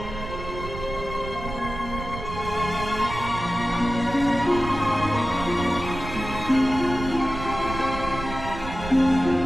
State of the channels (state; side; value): noise; right; rumble, 9 dB below the sound